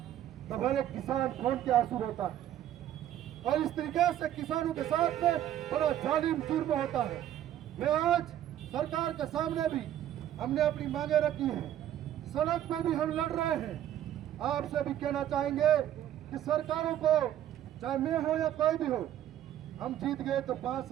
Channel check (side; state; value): left; quieter; 11.6 dB